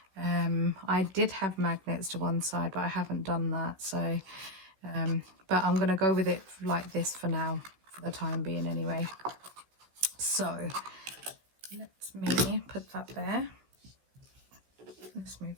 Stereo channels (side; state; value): left; late; 15 ms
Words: I did have magnets to one side, but I haven't done that. So, but I'm going to go with it like this for now, for the time being anyway. So, let me put that there. Let's move